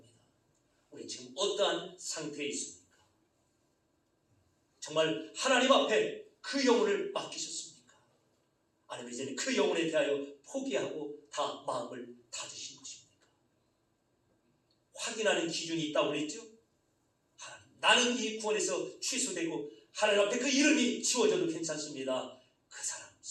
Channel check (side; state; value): both; identical; correlation 1.00